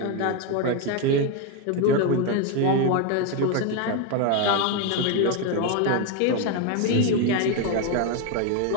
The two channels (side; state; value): both; different; correlation 0.02